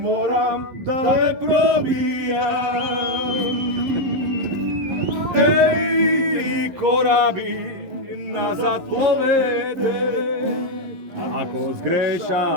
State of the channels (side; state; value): left; late; 11 ms